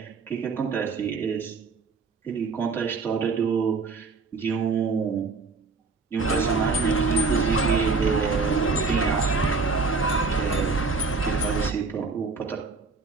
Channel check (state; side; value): quieter; left; 4.3 dB